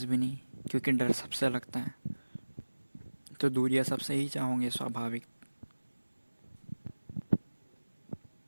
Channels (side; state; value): both; inverted; correlation -1.00